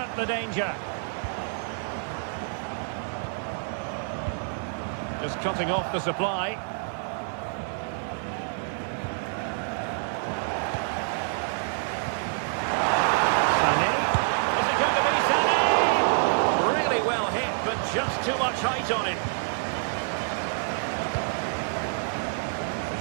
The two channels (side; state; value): left; silent; 60 dB below the other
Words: the danger. Just cutting off the supply. Sané. Is it going to be Sané? Really well hit, but just too much height on it.